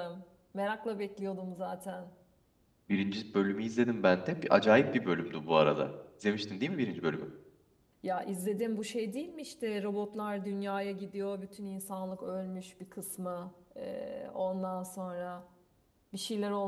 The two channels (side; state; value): both; identical; correlation 1.00